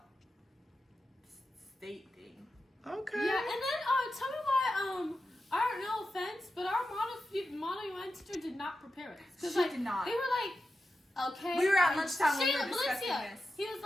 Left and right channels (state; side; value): normal; both; correlation 0.91